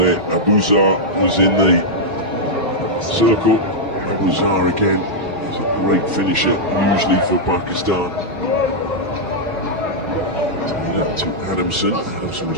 Abuzar was in the circle. Abuzar again is a great finisher, usually for Pakistan. Taylor to Adamson. Adamson was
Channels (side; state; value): both; normal; correlation -0.05